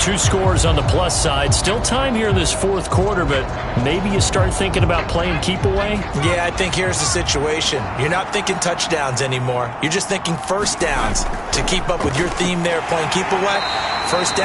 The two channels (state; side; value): identical; both; correlation 1.00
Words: scores on the plus side. Still time here in this fourth quarter, but maybe you start thinking about playing keep away? Yeah, I think here's the situation. You're not thinking touchdowns anymore. You're just thinking first downs. To keep up with your theme there, playing keep away, first